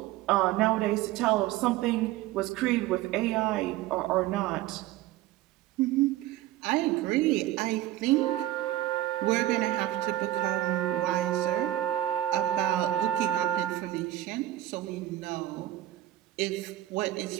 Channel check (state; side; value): quieter; left; 14.4 dB